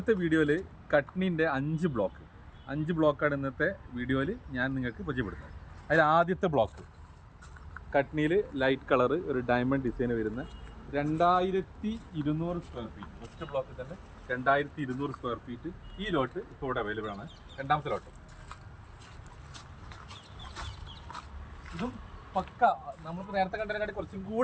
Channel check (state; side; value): identical; both; correlation 1.00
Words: വീഡിയോയിൽ കട്നിൻ്റെ 5 ബ്ലോക്കാണ് ഇന്നത്തെ വീഡിയോയിൽ ഞാൻ നിങ്ങൾക്ക് പരിചയപ്പെടുത്തുന്നത്. അതിൽ ആദ്യത്തെ ബ്ലോക്ക് കട്നിയിൽ ലൈറ്റ് കളറ് ഒരു ഡയമണ്ട് ഡിസൈൻ വരുന്ന 2200 സ്ക്വയർ ഫീറ്റ്. ഫസ്റ്റ് ബ്ലോക്കിൽ തന്നെ 2200 സ്ക്വയർ ഫീറ്റ് ഈ ലോട്ട് ഇപ്പോൾ ഇവിടെ അവൈലബിൾ ആണ്. രണ്ടാമത്തെ ലോട്ട് ഇതും പക്ക നമുക്ക് നേരത്തെ കണ്ടതിനായിട്ട് കുറച്ചും